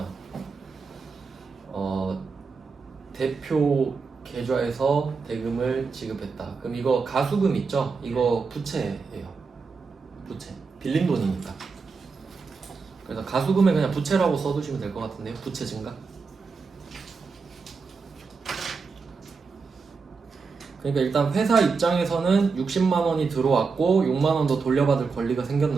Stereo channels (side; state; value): left; quieter; 4.8 dB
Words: 대표 계좌에서 대금을 지급했다. 그럼 이거 가수금 있죠? 이거 부채예요. 부채. 빌린 돈이니까. 그래서 가수금에 그냥 부채라고 써두시면 될 것 같은데요. 부채 증가. 그러니까 일단 회사 입장에서는 60만 원이 들어왔고 6만 원 더 돌려받을 권리가